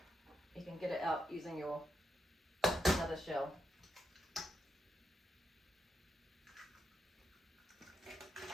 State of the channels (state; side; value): normal; both; correlation 0.83